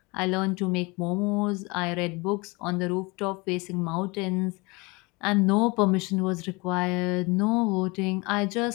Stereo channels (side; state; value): right; quieter; 26.1 dB